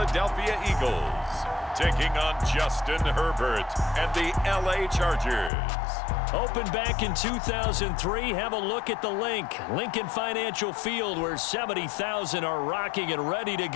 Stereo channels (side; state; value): right; drops out; at 5.5 s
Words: Eagles taking on Justin Herbert and the LA Chargers. Opened back in 2003, have a look at the Lincoln Financial Field, where 70,000 are rocking and ready to